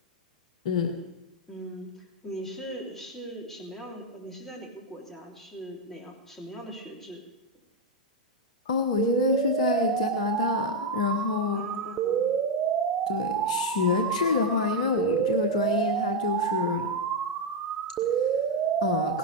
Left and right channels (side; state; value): both; normal; correlation 0.03